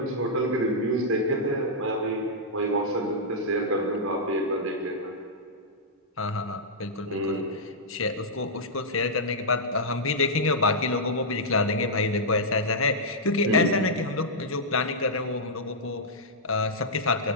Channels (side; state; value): both; normal; correlation -0.10